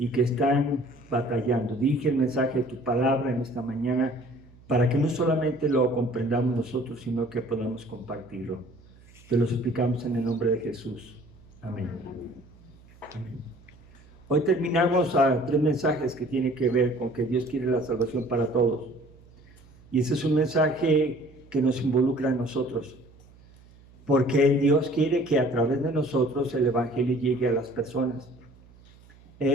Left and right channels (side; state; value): right; noise; hum, 25 dB below the sound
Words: que están batallando. Dirige el mensaje de tu palabra en esta mañana para que no solamente lo comprendamos nosotros, sino que podamos compartirlo. Te lo suplicamos en el nombre de Jesús. Amén. Amén. Hoy terminamos a 3 mensajes que tienen que ver con que Dios quiere la salvación para todos. Y ese es un mensaje que nos involucra a nosotros, porque Dios quiere que a través de nosotros el Evangelio llegue a las personas.